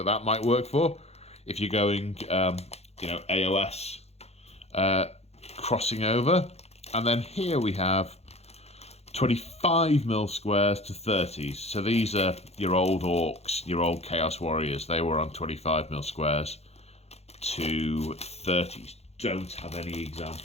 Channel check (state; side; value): late; right; 0.31 ms